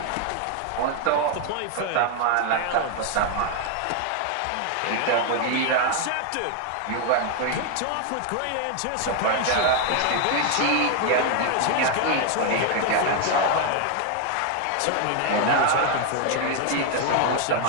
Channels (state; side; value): different; both; correlation 0.00